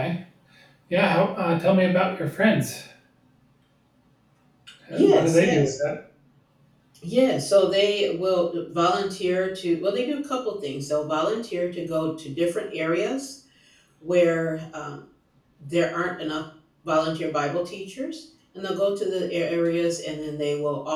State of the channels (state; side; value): identical; both; correlation 1.00